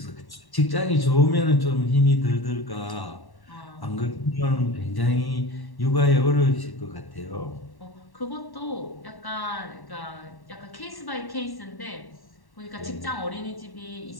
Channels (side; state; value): right; late; 1.1 ms